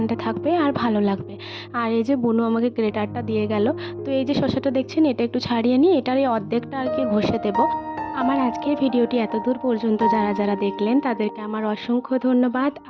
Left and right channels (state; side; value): identical; both; correlation 1.00